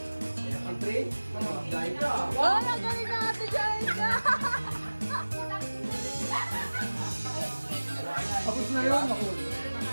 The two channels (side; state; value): both; inverted; correlation -1.00